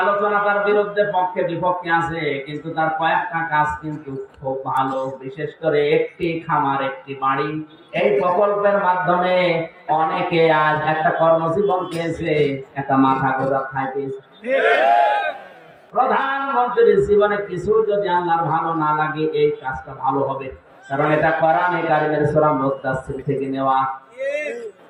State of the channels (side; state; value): both; identical; correlation 1.00